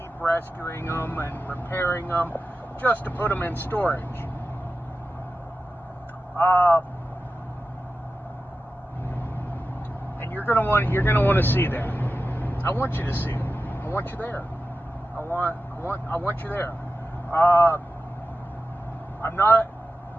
rescuing them and repairing them just to put them in storage. And you're gonna want to see that. I want you to see it. I want you there. I want you there. I'm not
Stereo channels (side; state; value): both; normal; correlation 0.92